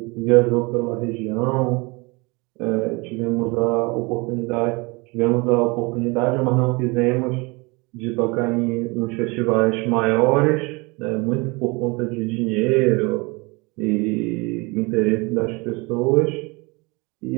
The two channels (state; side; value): quieter; left; 26.9 dB